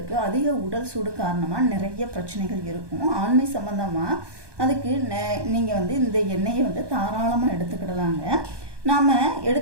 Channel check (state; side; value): late; left; 1.2 ms